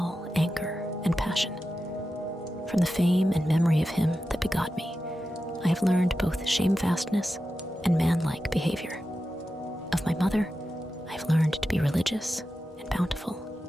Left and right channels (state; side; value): normal; both; correlation 0.91